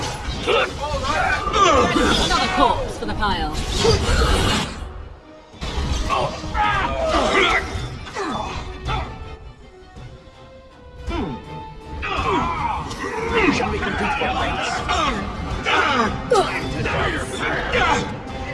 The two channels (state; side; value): identical; both; correlation 1.00